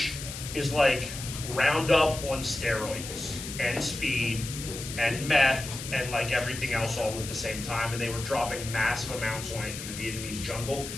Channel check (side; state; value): left; noise; hiss, 9 dB below the sound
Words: is like Roundup on steroids and speed and meth and like everything else all at the same time, and they were dropping massive amounts on it in the Vietnamese jungle